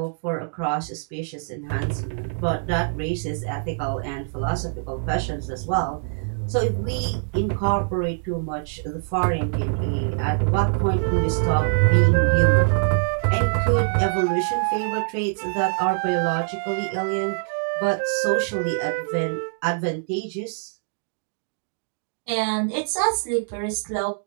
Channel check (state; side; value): silent; left; digital silence